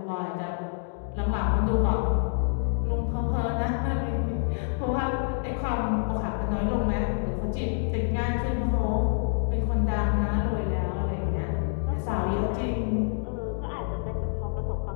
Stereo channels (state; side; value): silent; right; digital silence